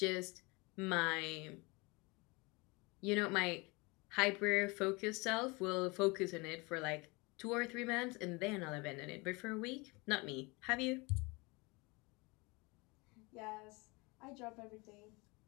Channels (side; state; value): right; quieter; 26.5 dB